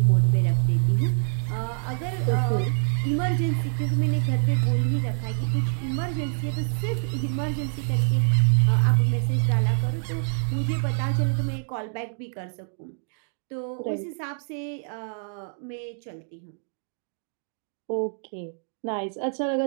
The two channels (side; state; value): left; silent; digital silence